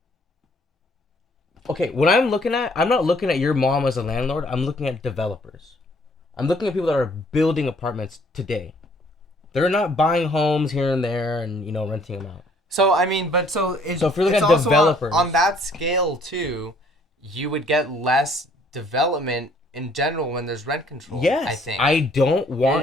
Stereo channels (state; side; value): normal; both; correlation 0.61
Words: Okay, what I'm looking at, I'm not looking at your mom as a landlord. I'm looking at developers. I'm looking at people that are building apartments today. They're not buying homes here and there and, renting them out. So, I mean, but so if you're looking it's at also developers. on that scale, too, you would get less development in general when there's rent control. Yes. I think. I don't